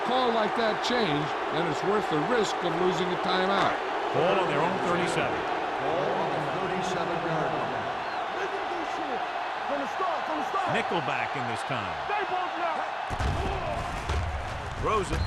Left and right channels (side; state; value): both; identical; correlation 1.00